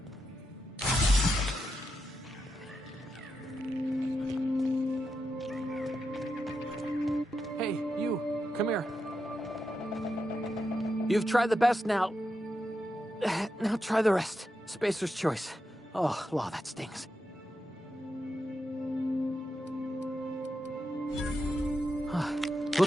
Hey, you, come here. You've tried the best now. Now try the rest. Spacer's choice. Oh, law, that stings.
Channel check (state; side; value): normal; both; correlation 0.86